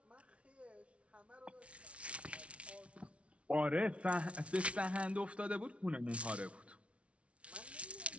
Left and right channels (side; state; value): left; late; 0.062 ms